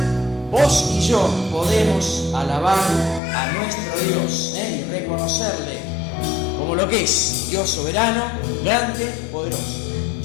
vos y yo podemos alabar a nuestro Dios y reconocerle como lo que es, Dios soberano, grande, poderoso.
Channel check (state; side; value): drops out; right; at 3.2 s